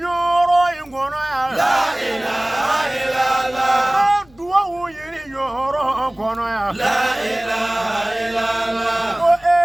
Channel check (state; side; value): noise; left; rumble, 29 dB below the sound